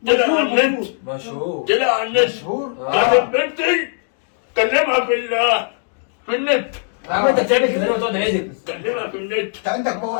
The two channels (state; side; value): silent; right; digital silence